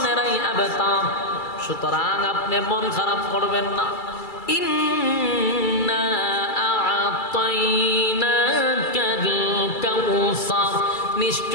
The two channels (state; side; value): late; right; 2.3 ms